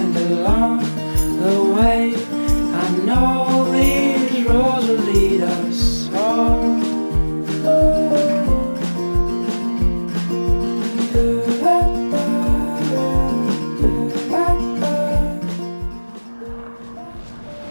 along the way. I know these roads will lead us home.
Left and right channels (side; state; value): both; inverted; correlation -1.00